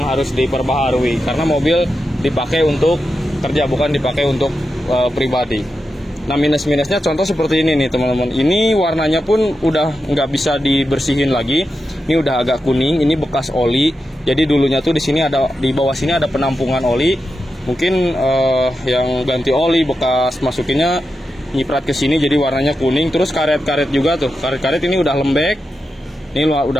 harus diperbaharui, karena mobil dipakai untuk kerja, bukan dipakai untuk pribadi. Nah minus-minusnya contoh seperti ini nih teman-teman. Ini warnanya pun udah nggak bisa dibersihin lagi. Ini udah agak kuning. Ini bekas oli. Jadi dulunya tuh di sini ada, di bawah sini ada penampungan oli. Mungkin yang ganti oli bekas masukinnya nyiprat ke sini jadi warnanya kuning. Terus karet-karet juga tuh, karet-karet ini udah lembek. Ini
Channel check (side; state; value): both; normal; correlation 0.89